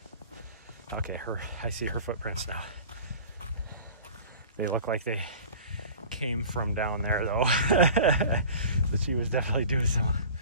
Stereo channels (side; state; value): both; inverted; correlation -0.41